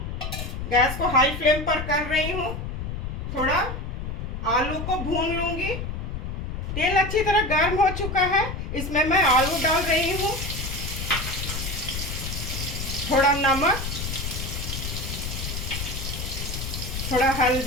गैस को हाई फ्लेम पर कर रही हूँ। थोड़ा आलू को भून लूंगी। तेल अच्छी तरह गर्म हो चुका है। इसमें मैं आलू डाल रही हूँ। थोड़ा नमक, थोड़ा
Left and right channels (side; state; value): left; noise; rumble, 5 dB below the sound